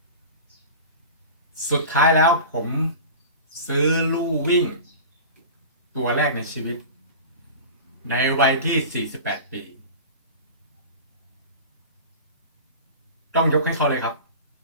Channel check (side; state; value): both; inverted; correlation -0.34